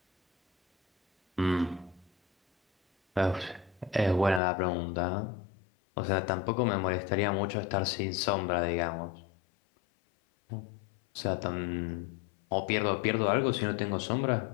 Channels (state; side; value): drops out; right; at 4.4 s